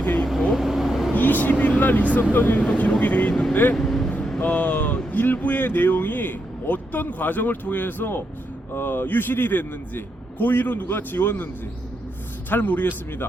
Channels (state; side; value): normal; both; correlation 0.82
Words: 돼 있고 20일 날 있었던 일도 기록이 돼 있는데 일부의 내용이 어떤 과정을 통해서 유실이 됐는지 고의로 누가 지웠는지 잘